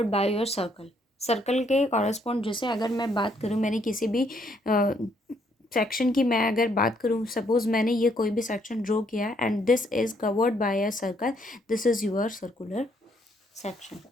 by your circle. Circle के कॉरस्पॉन्ड, जैसे अगर मैं बात करूँ, मैंने किसी भी सेक्शन की मैं अगर बात करूँ, सपोज मैंने ये कोई भी सेक्शन ड्रॉ किया and this is covered by a circle, this is your circular section.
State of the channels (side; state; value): both; normal; correlation 0.70